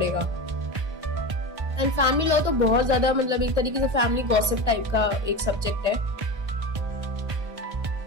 एंड फैमिली लॉ तो बहुत ज्यादा मतलब एक तरीके से फैमिली गॉसिप टाइप का एक सब्जेक्ट है।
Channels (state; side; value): late; left; 1.3 ms